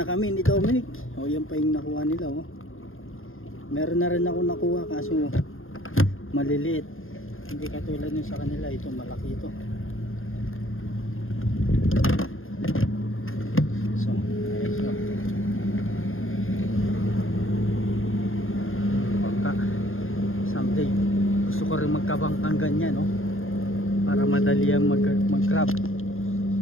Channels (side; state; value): right; late; 0.60 ms